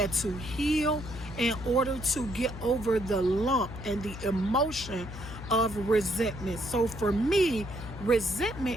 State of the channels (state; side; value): noise; left; hum, 11 dB below the sound